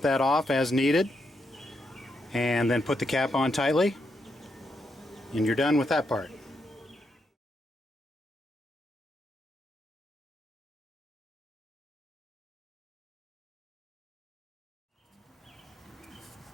that off as needed, and then put the cap on tightly, and you're done with that part.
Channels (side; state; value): both; normal; correlation 0.81